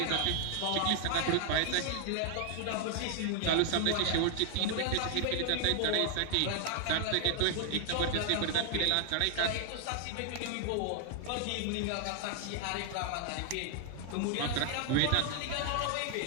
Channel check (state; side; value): different; both; correlation 0.00